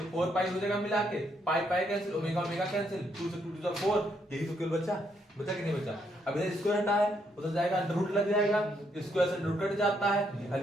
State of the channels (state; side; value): normal; both; correlation 0.75